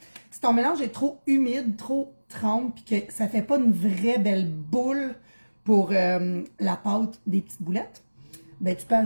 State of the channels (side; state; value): both; inverted; correlation -1.00